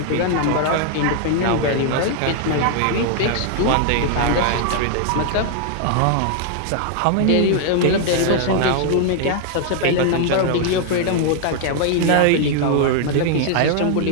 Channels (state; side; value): different; both; correlation 0.00